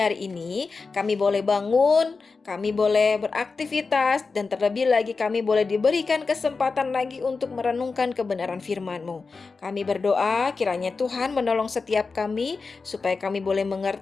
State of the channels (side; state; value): right; quieter; 4.4 dB